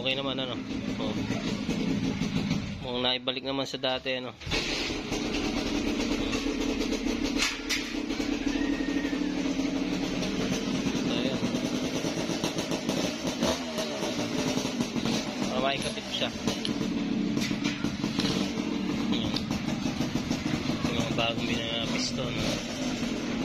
naman, Mukhang naibalik naman sa dati, So, ayan. Makikapit siya. Yung mga bagong piston.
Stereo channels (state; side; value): identical; both; correlation 1.00